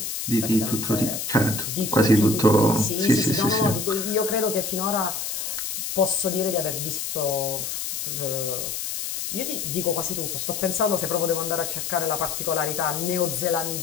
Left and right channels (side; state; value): left; noise; hiss, 4 dB below the sound